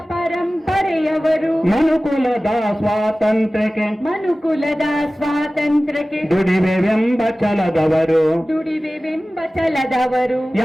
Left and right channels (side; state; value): both; normal; correlation 0.97